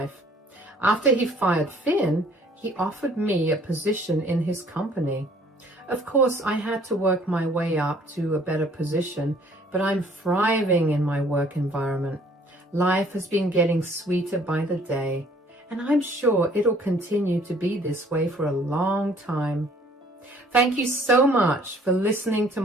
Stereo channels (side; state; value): both; normal; correlation 0.58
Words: After he fired Finn, he offered me a position in his company. Of course, I had to work my way up to a better position, but I'm thriving in my work environment. Life has been getting sweeter by the day, and I'm sure it'll continue to be this way for a long time. Thank you so much for listening to